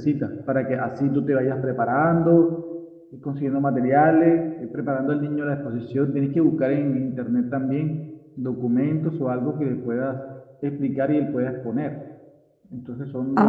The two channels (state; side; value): identical; both; correlation 1.00